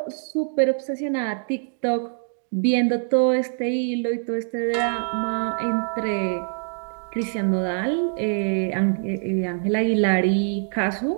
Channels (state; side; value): silent; left; digital silence